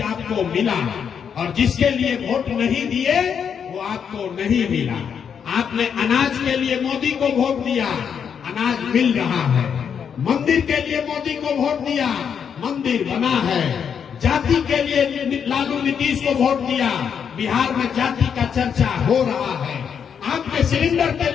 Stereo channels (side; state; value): right; quieter; 7.4 dB